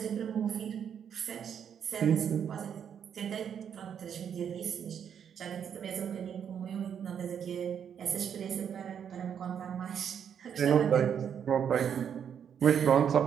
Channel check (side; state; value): left; quieter; 8.2 dB